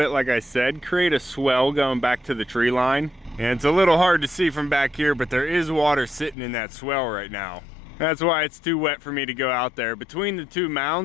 like I said, create a swell going back to the tree line. And it's a little hard to see from back here, but there is water sitting in that swell right now. That's why it's too wet for me to go out there. Between the 2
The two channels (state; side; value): drops out; right; at 6.4 s